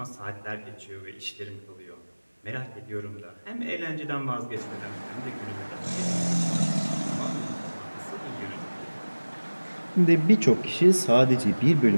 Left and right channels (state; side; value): inverted; both; correlation -1.00